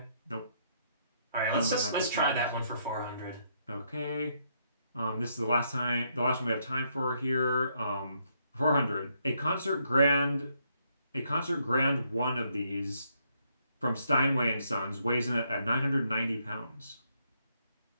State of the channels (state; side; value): inverted; both; correlation -0.74